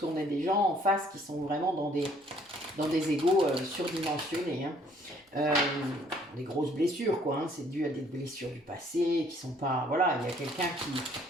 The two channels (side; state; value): both; normal; correlation 0.61